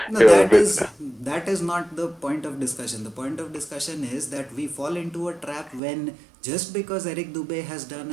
No, that is not the point of discussion. The point of discussion is that we fall into a trap when, just because Eric Dubay has done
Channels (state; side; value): drops out; left; at 5.8 s